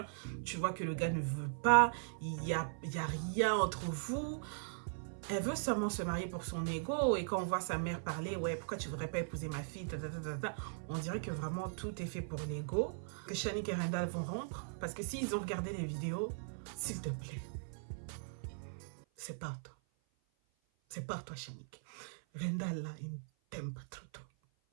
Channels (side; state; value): left; silent; 52 dB below the other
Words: Tu vois que le gars ne veut pas. Il y a rien entre vous. Elle veut seulement se marier pour son ego. Et quand on voit sa mère parler, ouais, pourquoi tu voudrais pas épouser ma fille, on dirait que vraiment tout est fait pour l'ego. Que Shanique et Randall vont rompre. Parce que s'ils ont regardé les vidéos, s'il te plaît, c'est pas toi. C'est pas toi, Shanique. Randall, là, il t'aime pas trop.